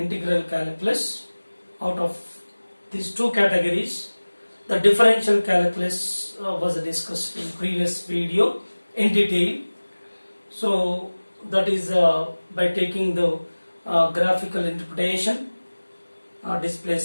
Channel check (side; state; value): both; inverted; correlation -1.00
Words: calculus. Out of these two categories, the differential calculus was discussed in previous video in detail. So that is by taking the graphical interpretation,